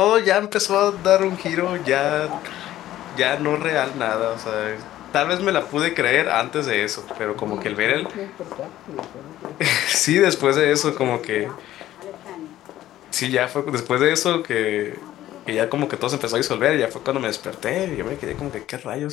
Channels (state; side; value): quieter; right; 13.7 dB